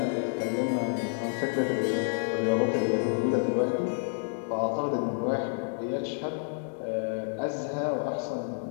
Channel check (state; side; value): silent; right; 58 dB below the other